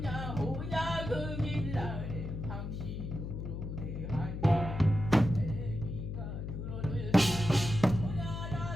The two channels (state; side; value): noise; left; hum, 6 dB below the sound